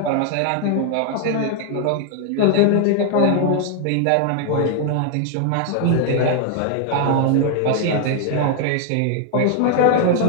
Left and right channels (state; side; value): different; both; correlation 0.00